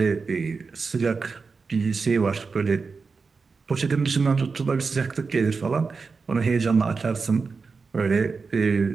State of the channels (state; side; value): quieter; left; 4.7 dB